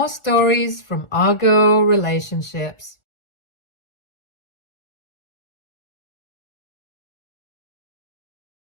stories from Argo Relationships.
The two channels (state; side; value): late; right; 1.4 ms